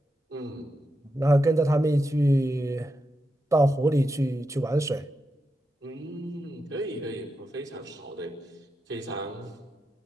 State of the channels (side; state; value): both; normal; correlation 0.87